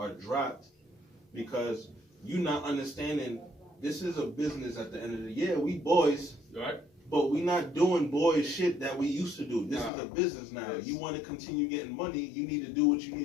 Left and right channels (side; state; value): right; drops out; at 9.9 s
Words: dropped, because you not understanding this is a business at the end of the year. We boys, Right? but we not doing boys shit that we used to do. This is a business now. Yes. You want to continue getting money, you need to do what you